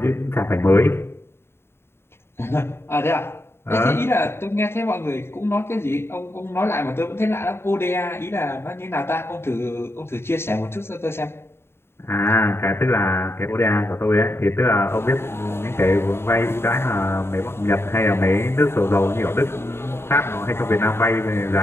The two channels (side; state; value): right; late; 0.12 ms